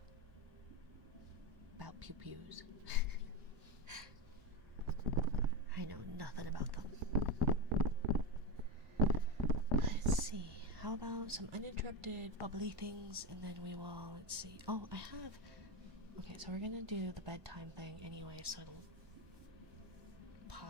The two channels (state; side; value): late; left; 1.2 ms